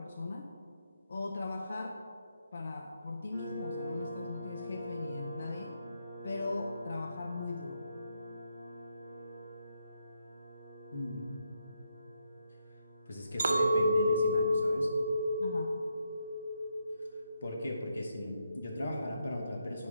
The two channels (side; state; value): both; inverted; correlation -0.80